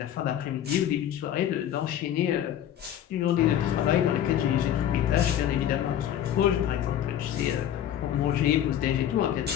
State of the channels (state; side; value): quieter; right; 10.7 dB